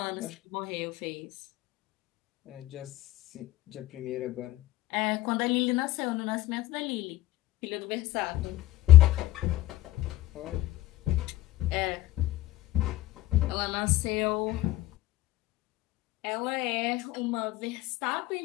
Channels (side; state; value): right; quieter; 15.9 dB